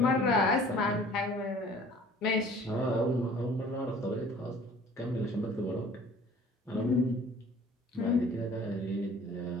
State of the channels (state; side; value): normal; both; correlation 0.50